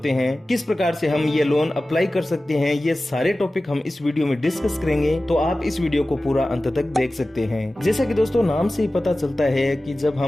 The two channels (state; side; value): normal; both; correlation 0.96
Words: हैं, किस प्रकार से हम ये लोन अप्लाई कर सकते हैं। ये सारे टॉपिक हम इस वीडियो में डिस्कस करेंगे, तो आप इस वीडियो को पूरा अंत तक देख सकते हैं। जैसा कि दोस्तों नाम से ही पता चलता है कि जब